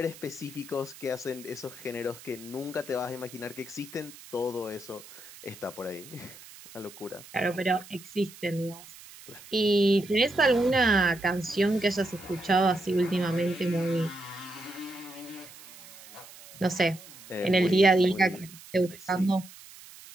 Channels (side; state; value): right; noise; hiss, 19 dB below the sound